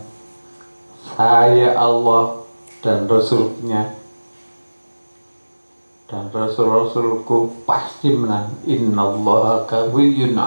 saya Allah dan Rasulnya dan Rasul-Rasulku pasti menang. Innallaha qawiyyun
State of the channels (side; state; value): both; inverted; correlation -1.00